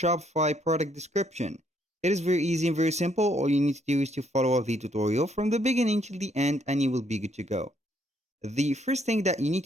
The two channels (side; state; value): both; normal; correlation 0.70